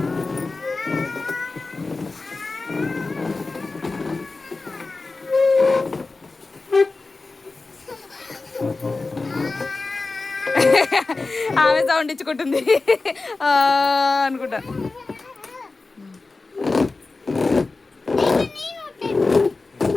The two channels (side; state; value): right; quieter; 3.7 dB